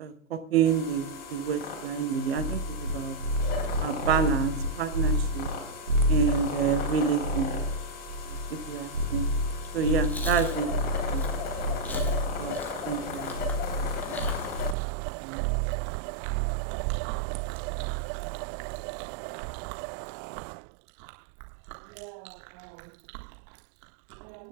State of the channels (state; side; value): drops out; left; at 14.8 s